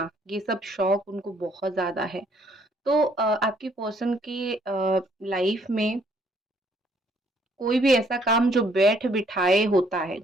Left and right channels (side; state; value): both; normal; correlation 0.65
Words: ये सब शौक उनको बहुत ज़्यादा है। तो आपकी पर्सन की लाइफ में कोई भी ऐसा काम जो बैठ-बिठाए होता है,